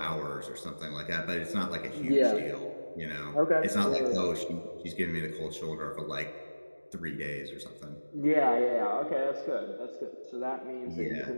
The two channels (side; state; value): both; inverted; correlation -1.00